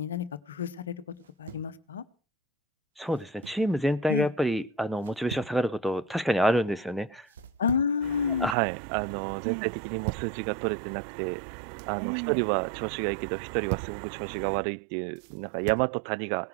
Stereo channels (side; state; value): left; drops out; at 8.6 s